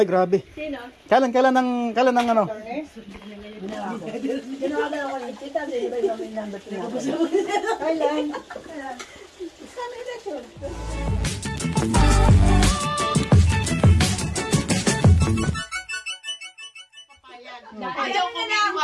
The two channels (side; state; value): both; identical; correlation 1.00